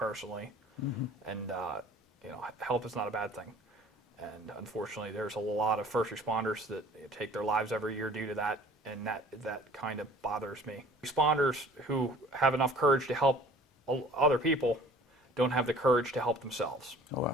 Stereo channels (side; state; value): both; normal; correlation 0.50